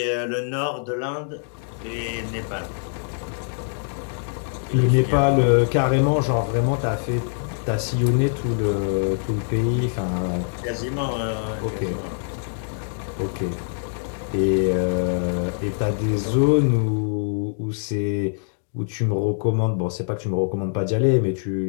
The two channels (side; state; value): right; silent; digital silence